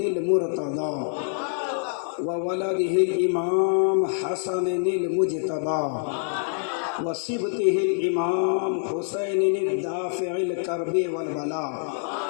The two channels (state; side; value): silent; right; 61 dB below the other